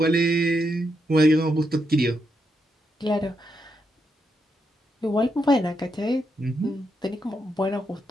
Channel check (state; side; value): normal; both; correlation 0.82